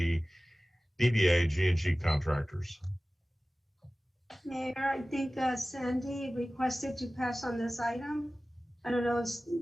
DBA G&G Contractors. Mayor, I think Sandy requested to pass on this item. I don't know if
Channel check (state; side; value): normal; both; correlation 0.97